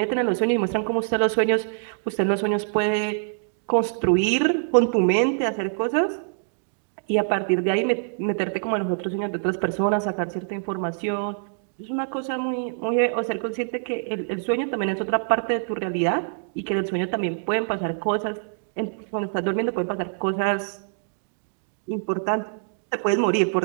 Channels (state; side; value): silent; left; digital silence